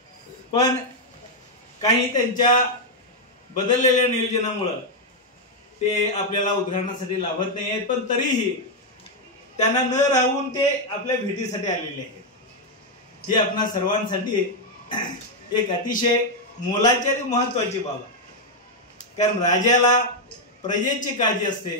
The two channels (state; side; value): normal; both; correlation 0.01